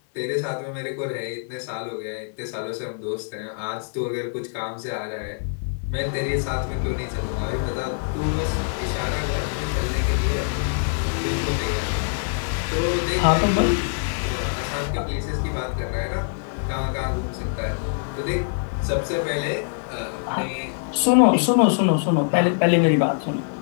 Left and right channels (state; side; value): silent; right; 55 dB below the other